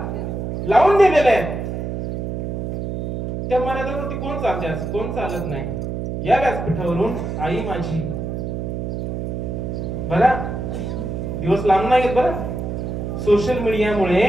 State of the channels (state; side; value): noise; right; hum, 4 dB below the sound